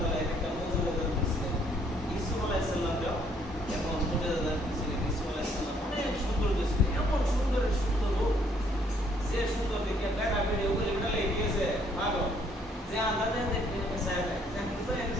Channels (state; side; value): normal; both; correlation 0.66